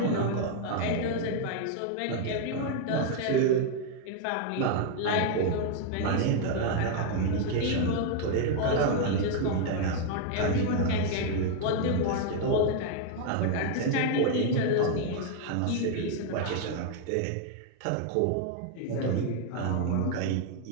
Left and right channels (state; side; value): different; both; correlation 0.00